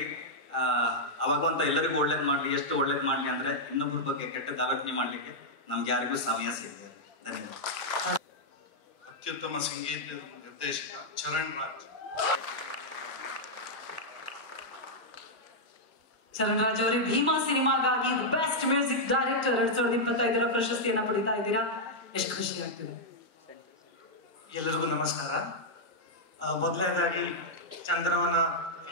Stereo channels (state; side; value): normal; both; correlation -0.05